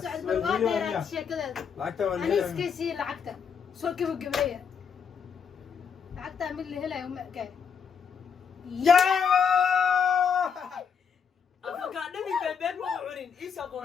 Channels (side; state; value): right; quieter; 6.7 dB